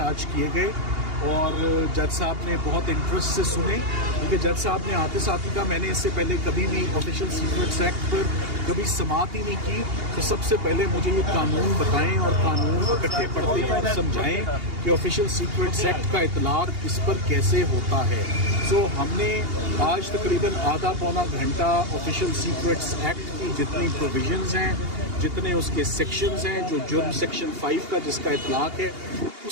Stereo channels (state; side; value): late; left; 2.8 ms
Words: आज किए गए और जज साहब ने बहुत इंटरेस्ट से सुने, क्योंकि जज साहब ने आते साथ ही कहा मैंने इससे पहले कभी भी ऑफिशियल सीक्रेट्स एक्ट पर कभी समाअत ही नहीं की, तो सबसे पहले मुझे ये कानून बताएं और कानून इकट्ठे पढ़ते हैं और समझाएं कि ऑफिशियल सीक्रेट्स एक्ट का इतलाक इस पर कैसे होता है। सो हमने आज तकरीबन आधा पौना घंटा ऑफिशियल सीक्रेट्स एक्ट की जितनी प्रोविजंस हैं, जितने उसके सेक्शंस हैं, जो जुर्म सेक्शन 5 का जिसका इतलाक है,